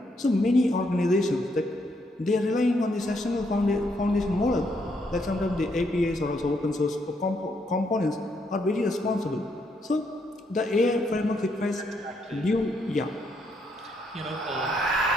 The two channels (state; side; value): normal; both; correlation 0.75